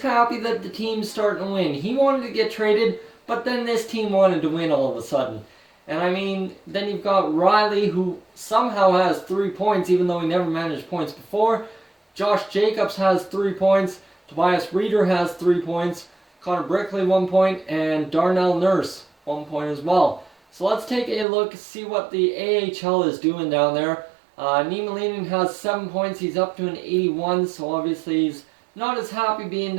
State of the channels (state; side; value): drops out; left; at 21.2 s